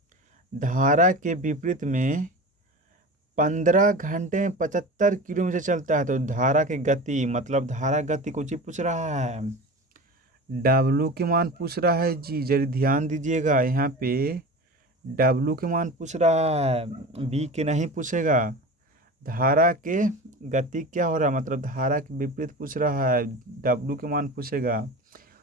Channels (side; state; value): both; normal; correlation 0.32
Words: 15 घंटे में 75 किलोमीटर चलता है। तो धारा की गति मतलब धारा गति कुछ ही पूछ रहा है, डब्लू के मान पूछ रहा है जी, जरा ध्यान दीजिएगा यहाँ पे। डब्लू के मान पूछ रहा है, बी के नहीं पूछेगा। धारा के गति क्या हो रहा है, मतलब धारा के विपरीत पूछ रहा है, डब्लू के मान पूछेगा।